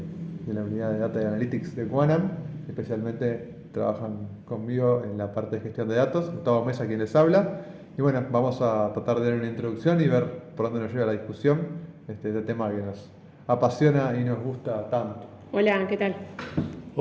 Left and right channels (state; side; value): identical; both; correlation 1.00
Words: la unidad de Data y Analytics de Quanam. Especialmente trabajan conmigo en la parte de gestión de datos. Gustavo Mesa, quien les habla. Y bueno, vamos a tratar de dar una introducción y ver por dónde nos lleva la discusión. Este tema que nos apasiona y nos gusta tanto. Hola, ¿qué tal?